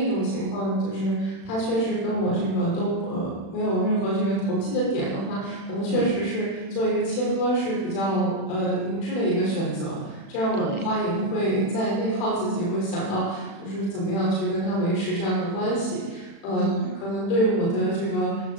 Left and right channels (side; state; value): right; late; 36 ms